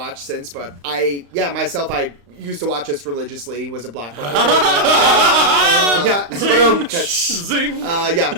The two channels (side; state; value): left; late; 35 ms